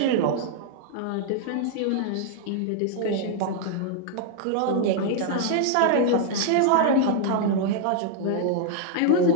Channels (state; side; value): different; both; correlation 0.00